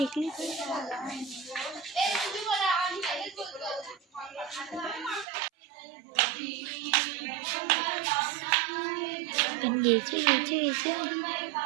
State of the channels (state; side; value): drops out; left; at 5.2 s